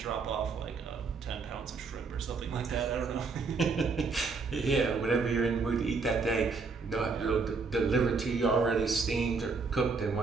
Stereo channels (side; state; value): left; quieter; 4.5 dB